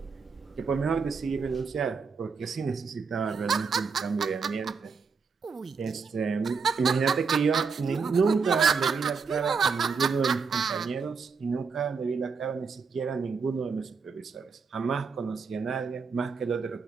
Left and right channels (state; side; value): quieter; left; 5.3 dB